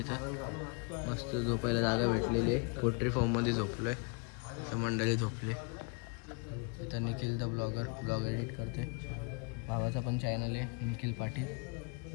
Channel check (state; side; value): quieter; right; 31.9 dB